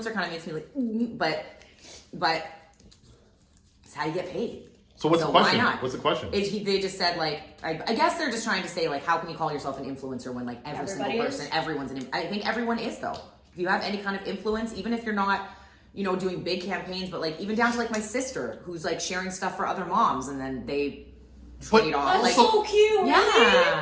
kind of makes me like, but it's how you get paid. So what's the why question? not? What's the question? They just said like, I guess they're just trying to say like, how can you call yourself an influencer when like every single Everybody person, is. everyone's I think everyone is though. If you have any kind of influence, even if you're not, doing big campaigns, but like even down to like my sister who's like sharing stuff for other moms and then they trade off. That's Like, so cute.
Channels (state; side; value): identical; both; correlation 1.00